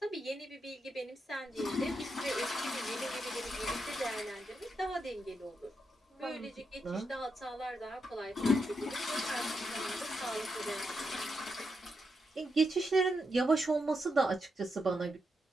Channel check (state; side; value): normal; both; correlation 0.84